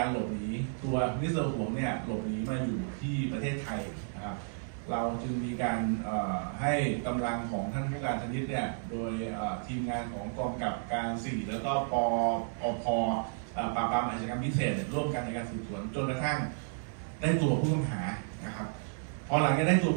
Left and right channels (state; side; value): silent; left; 56 dB below the other